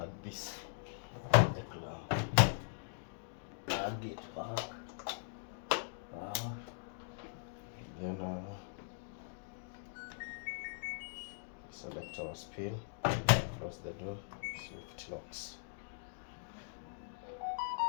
this, the clamp. Plug it back. Then select our spin, close the door, see if it locks.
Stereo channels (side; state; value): right; silent; digital silence